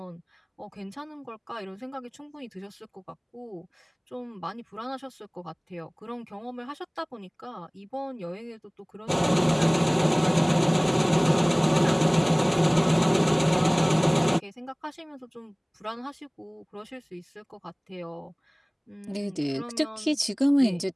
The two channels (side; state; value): both; identical; correlation 1.00